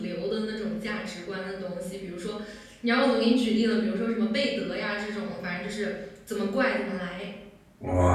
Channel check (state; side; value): identical; both; correlation 1.00